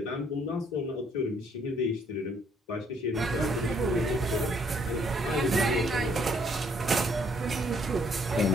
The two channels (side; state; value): both; normal; correlation 0.67